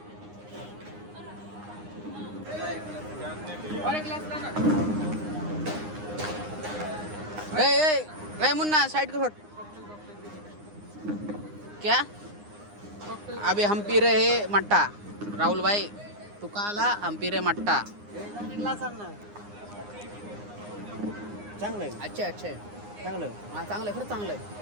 मुन्ना साइड को छोड़. क्या अभी हम पी रहे हैं मट्टा. राहुल भाई तू का आला? हम पी रहे मट्टा. चांगलं आहे. अच्छा चांगलं. हाँ चांगलं है. खरं चांगलं है.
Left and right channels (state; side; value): late; left; 9.7 ms